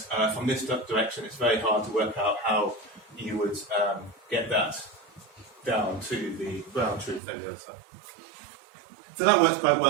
from this direction it's very hard to work out how you would get that down to the ground truth on the other side. So that works quite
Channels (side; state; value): left; drops out; at 7.2 s